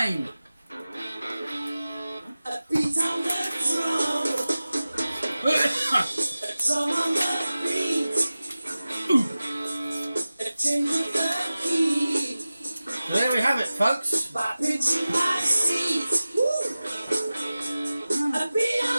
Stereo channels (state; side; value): inverted; both; correlation -0.96